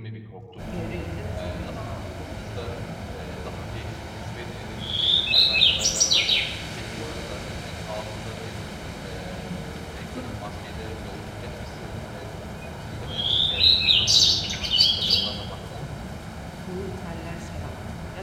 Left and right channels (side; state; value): both; identical; correlation 1.00